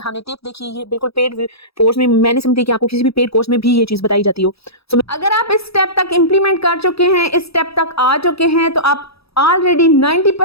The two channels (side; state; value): right; late; 0.77 ms